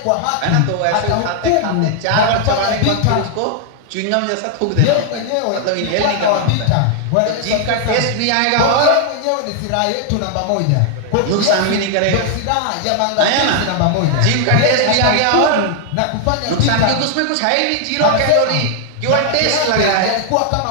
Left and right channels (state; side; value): different; both; correlation 0.00